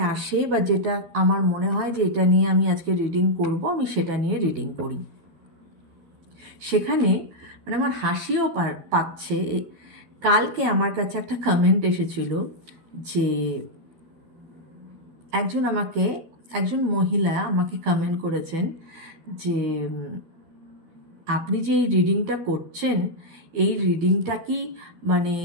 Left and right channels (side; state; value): left; late; 12 ms